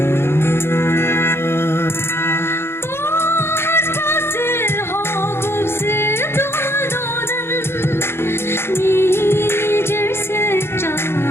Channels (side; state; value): right; late; 0.12 ms